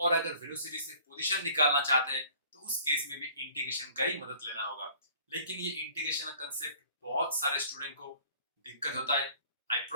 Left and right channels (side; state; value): both; inverted; correlation -0.52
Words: अगर वेलोसिटी से पोजीशन निकालना चाहते हैं तो उस केस में भी इंटीग्रेशन का ही मदद लेना होगा। लेकिन ये इंटीग्रेशन का कंसेप्ट बहुत सारे स्टूडेंट को दिक्कत होता है। आई